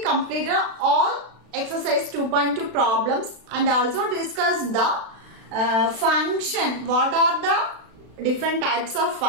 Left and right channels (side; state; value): left; late; 36 ms